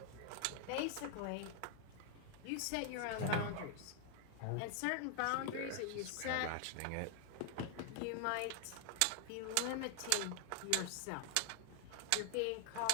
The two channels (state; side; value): different; both; correlation 0.00